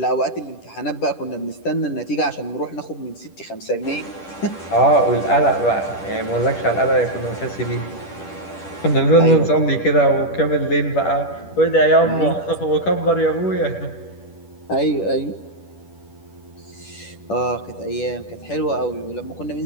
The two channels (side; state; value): right; late; 10 ms